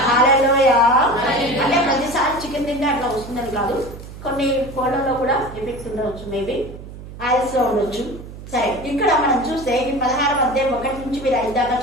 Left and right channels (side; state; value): right; noise; hum, 14 dB below the sound